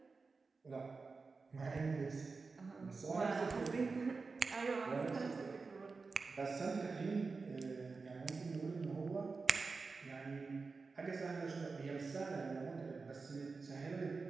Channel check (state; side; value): quieter; left; 4.3 dB